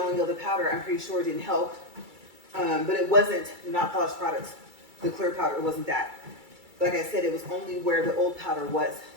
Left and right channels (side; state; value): left; late; 2.3 ms